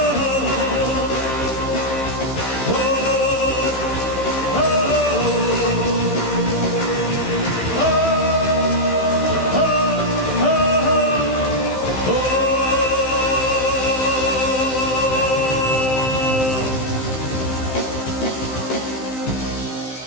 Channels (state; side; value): late; right; 15 ms